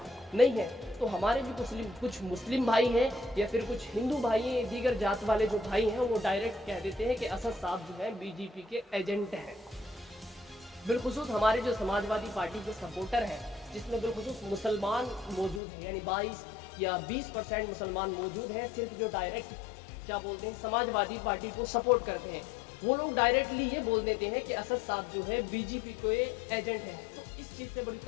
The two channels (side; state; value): right; drops out; at 15.6 s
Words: नहीं है। तो हमारे भी कुछ मुस्लिम भाई हैं, या फिर कुछ हिंदू भाई हैं, दीगर जात वाले जो भाई हैं, वो डायरेक्ट कह देते हैं कि असद साहब जो है बीजेपी के एजेंट हैं। बिलखुसूस हमारे जो समाजवादी पार्टी के सपोर्टर हैं, जिसमें बिलखुसूस मुसलमान मौजूद हैं, यानी 22 या 20% मुसलमान मौजूद हैं, सिर्फ जो डायरेक्ट क्या बोलते हैं समाजवादी पार्टी को सपोर्ट करते हैं, वो लोग डायरेक्टली ये बोल देते हैं कि असद साहब जो है बीजेपी के एजेंट हैं। तो इस चीज़ से बड़ी